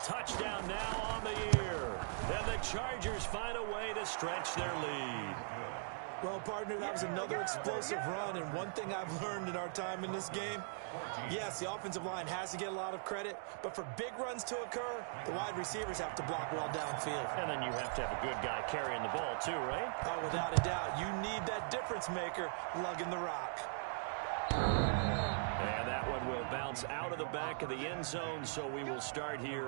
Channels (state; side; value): silent; left; digital silence